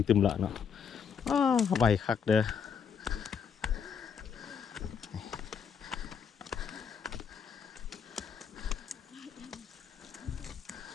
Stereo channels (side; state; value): right; quieter; 6.9 dB